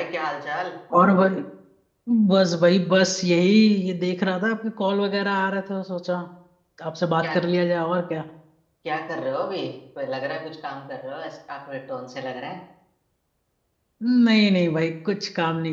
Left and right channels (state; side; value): identical; both; correlation 1.00